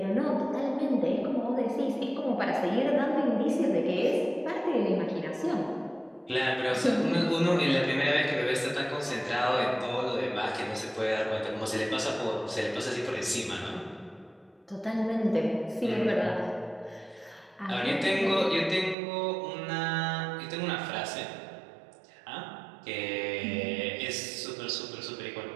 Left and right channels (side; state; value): left; drops out; at 18.9 s